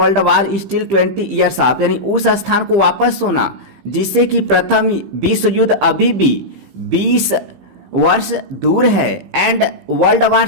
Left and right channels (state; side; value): late; left; 15 ms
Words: War still 20 years off, यानी उस स्थान को वापस होना जिससे कि प्रथम विश्व युद्ध अभी भी 20 वर्ष दूर है। एंड वर्ल्ड वार